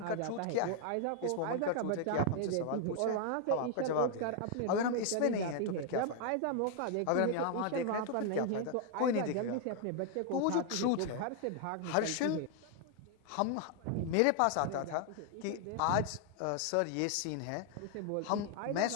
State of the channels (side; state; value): both; different; correlation 0.00